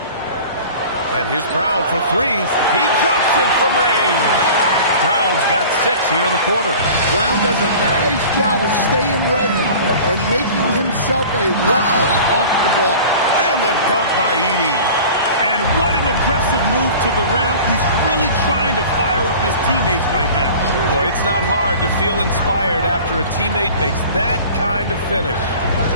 And here's Brown for three. He drops it from range. Brown's got 6 here in the quarter. Brown does a nice job of staying ready and making himself a weapon off the ball. And the dunk by Edey. And what an aggressive move to the rim. He's really trying to fire up his teammates right now. Boy, it's not hard to feel inspired after a teammate makes that kind of finish.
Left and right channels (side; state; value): both; inverted; correlation -0.41